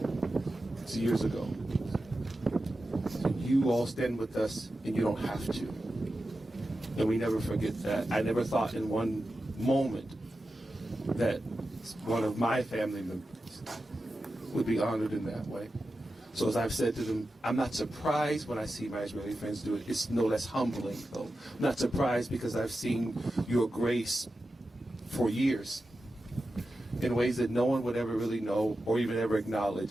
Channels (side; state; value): both; normal; correlation 0.92